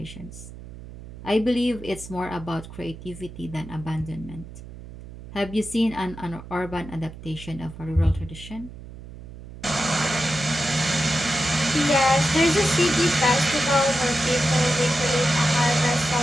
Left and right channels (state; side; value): noise; right; hum, 15 dB below the sound